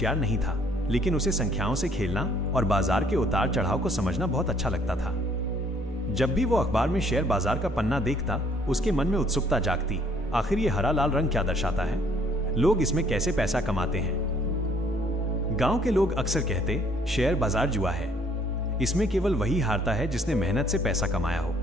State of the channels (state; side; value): normal; both; correlation 0.62